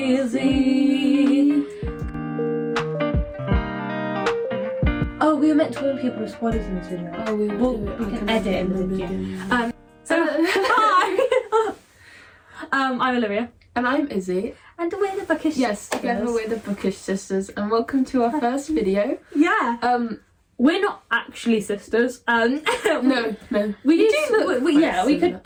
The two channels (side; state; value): both; identical; correlation 1.00